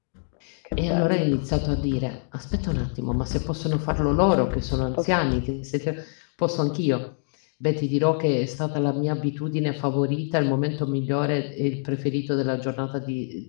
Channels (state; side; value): silent; right; digital silence